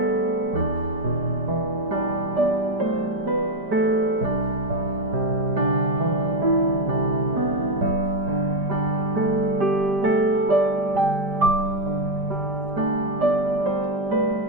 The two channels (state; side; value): late; left; 5.0 ms